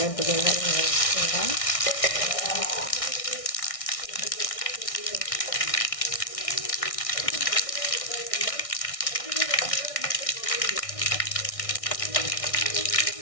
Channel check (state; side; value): late; right; 1.6 ms